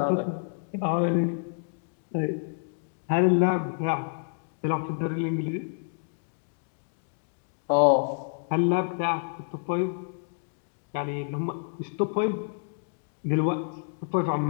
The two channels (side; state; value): right; silent; digital silence